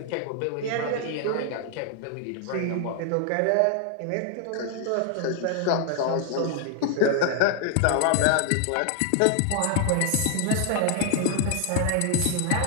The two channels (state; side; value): different; both; correlation 0.00